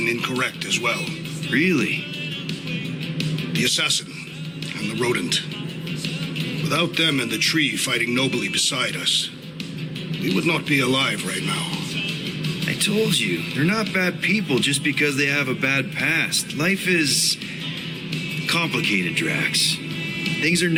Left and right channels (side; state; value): both; identical; correlation 1.00